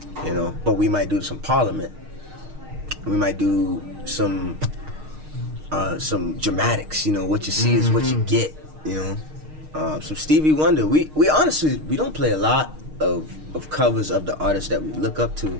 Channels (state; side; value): late; left; 6.5 ms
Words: But we might do some Parliament. We might do some dramatics, what you see is what you get, Some Stevie Wonder. We honestly, we don't play a lot of covers of the artists that we look up